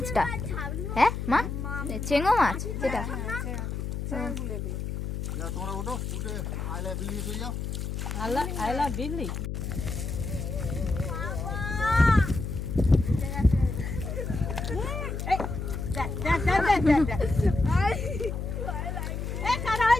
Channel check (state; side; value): noise; left; hum, 4 dB below the sound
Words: হ্যাঁ মা, চেঙ্গো মাছ যেটা। যা তোমরা ওঠো, উঠে আইলা বিলিয়ে চলে যাও। আইলা বিল্লি